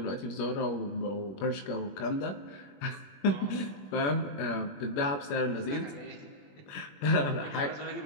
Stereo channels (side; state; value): right; late; 21 ms